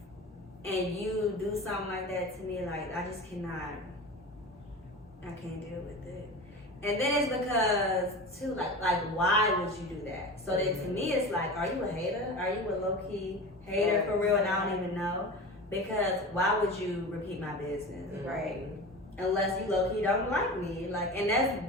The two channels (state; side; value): normal; both; correlation 0.31